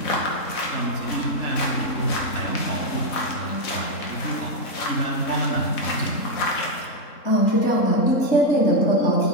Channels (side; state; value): right; late; 3.7 ms